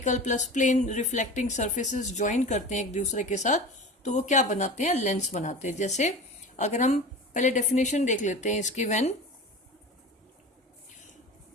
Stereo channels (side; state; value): both; normal; correlation 0.33